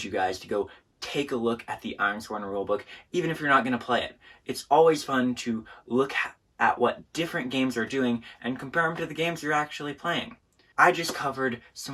you guys to go take a look at the Ironsworn rulebook, even if you're not going to play it. It's always fun to look at what different games are doing and compare them to the games you're actually playing. I just covered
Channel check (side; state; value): both; identical; correlation 1.00